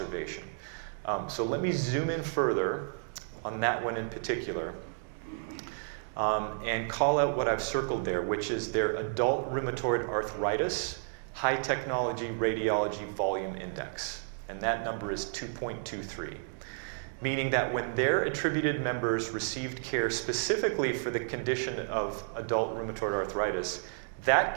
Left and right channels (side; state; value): left; silent; 57 dB below the other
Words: So let me zoom in further on that one in particular and call out what I've circled there, which is their adult rheumatoid arthritis high technology radiology volume index. And that number is 2.23, meaning that when their attributed members received care specifically for the condition of adult rheumatoid arthritis,